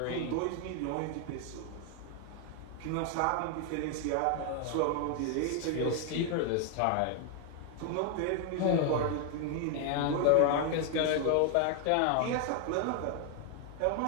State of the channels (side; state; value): both; different; correlation 0.00